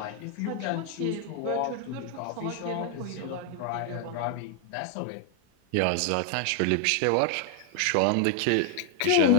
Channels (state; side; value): different; both; correlation 0.00